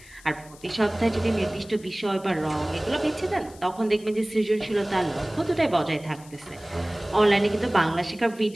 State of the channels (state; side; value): noise; left; hiss, 23 dB below the sound